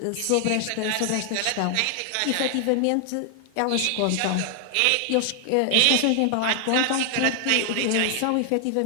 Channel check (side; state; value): both; different; correlation 0.00